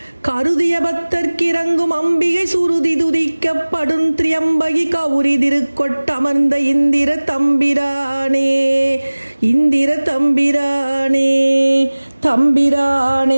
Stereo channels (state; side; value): inverted; both; correlation -1.00